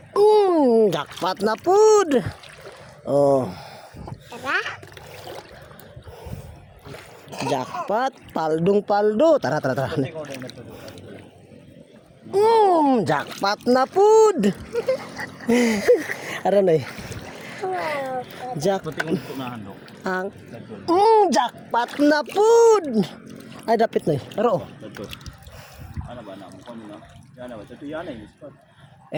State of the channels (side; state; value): both; identical; correlation 1.00